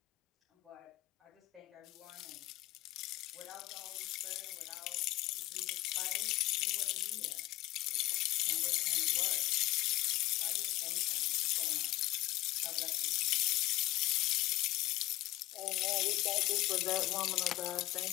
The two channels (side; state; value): right; quieter; 17.1 dB